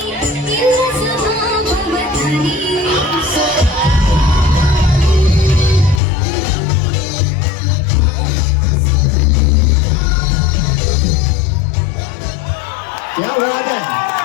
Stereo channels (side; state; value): right; drops out; at 6.0 s